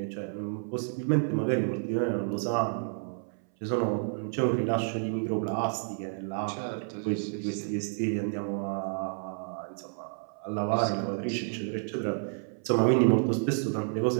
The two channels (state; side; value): silent; left; 58 dB below the other